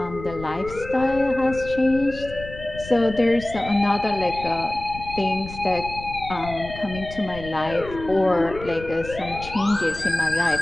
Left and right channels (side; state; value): left; noise; rumble, 13 dB below the sound